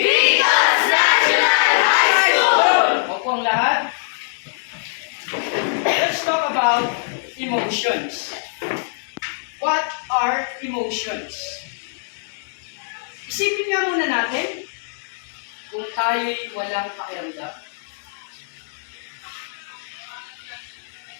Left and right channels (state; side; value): silent; right; digital silence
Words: National High School! Opo ang lahat. Let's talk about emotions. What are emotions? Isipin nga muna natin kung tayo'y walang pakiramdam.